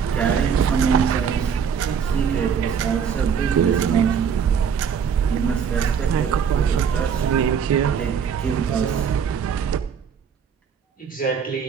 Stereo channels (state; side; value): quieter; left; 7.1 dB